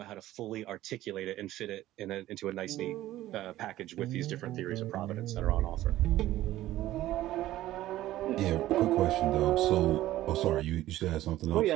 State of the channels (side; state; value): left; quieter; 14.8 dB